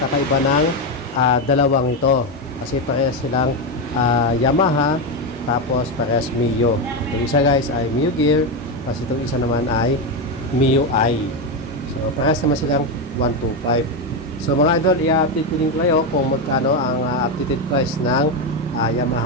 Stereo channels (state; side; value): normal; both; correlation 0.10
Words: ng dalawang ito. Kasi parehas silang Yamaha, tapos parehas Mio. Itong isa guys ay Mio Gear, tapos itong isa naman ay MIUI. So parehas naman silang 125. So mga idol, i-update ko din kayo kung magkano ang updated price ng